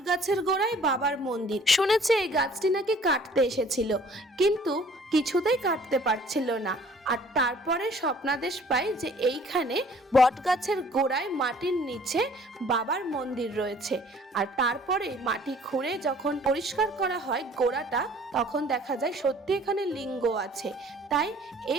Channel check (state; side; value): normal; both; correlation 0.54